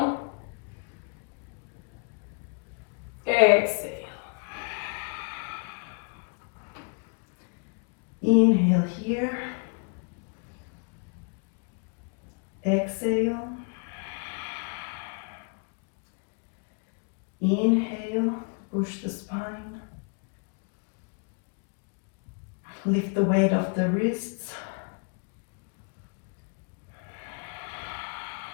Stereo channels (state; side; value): quieter; right; 39.2 dB